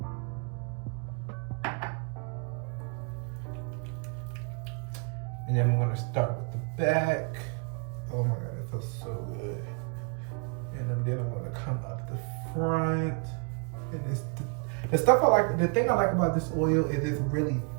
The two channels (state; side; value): quieter; left; 35.9 dB